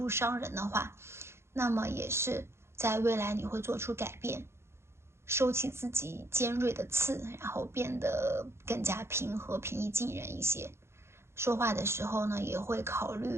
伤人的话，那么也是在未来你会做出改变，收起自己尖锐的刺，然后变得更加平和、平易近人一些。说话的时候呢，也会考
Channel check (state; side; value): late; left; 0.12 ms